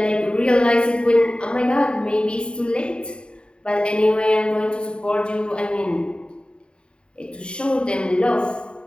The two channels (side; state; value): right; late; 0.052 ms